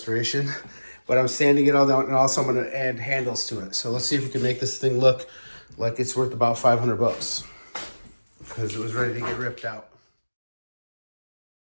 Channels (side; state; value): both; inverted; correlation -1.00